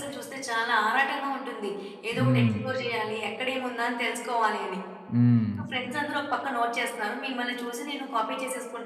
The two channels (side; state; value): both; identical; correlation 1.00